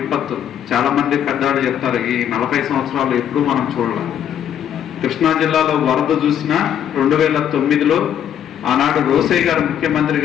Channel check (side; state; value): right; quieter; 9.6 dB